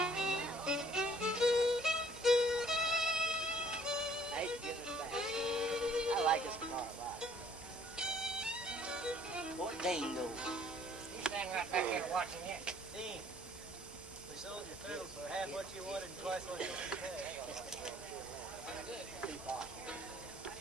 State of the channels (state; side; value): normal; both; correlation 0.59